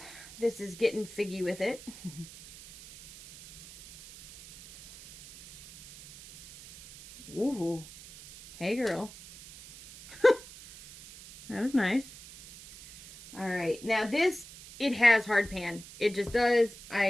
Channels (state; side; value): noise; right; hiss, 18 dB below the sound